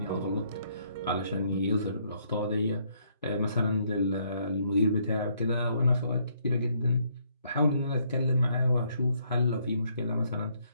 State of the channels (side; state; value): both; inverted; correlation -0.70